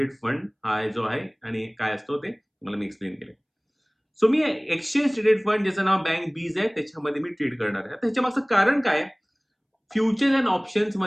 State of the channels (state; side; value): identical; both; correlation 1.00